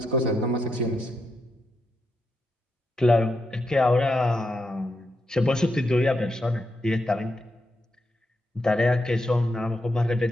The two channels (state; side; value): normal; both; correlation 0.83